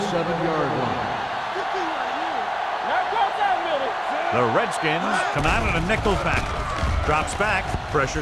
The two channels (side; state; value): both; identical; correlation 1.00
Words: line. Now go that middle. The Redskins come out in a nickel package. Drops back. Pressure